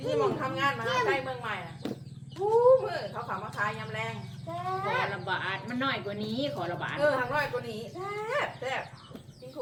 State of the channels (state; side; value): identical; both; correlation 1.00